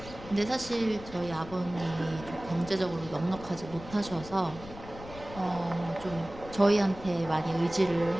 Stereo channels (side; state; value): left; noise; rumble, 15 dB below the sound